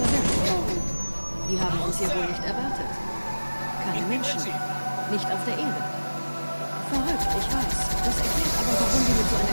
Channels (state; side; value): inverted; both; correlation -1.00